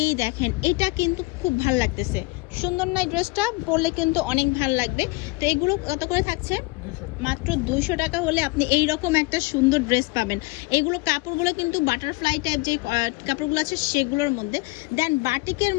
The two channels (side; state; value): right; quieter; 24.2 dB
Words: দেখেন, এটা কিন্তু খুব ভাল লাগতেছে, সুন্দর না? ড্রেসটা পরলে কিন্তু অনেক ভাল লাগবে। তো এগুলো কত করে থাকছে? মাত্র 200 টাকা হলে আপনি এই রকম একটা সুন্দর ড্রেস পাবেন। এগুলো কাপড়গুলো কিন্তু বাটারফ্লাই টাইপ যে কাপড়গুলো আছে সেগুলোর মধ্যে। দেন বাটিকের